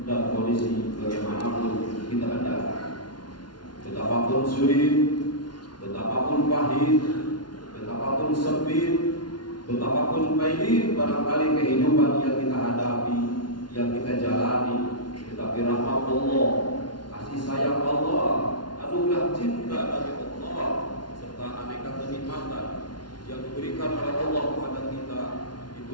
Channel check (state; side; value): late; right; 0.70 ms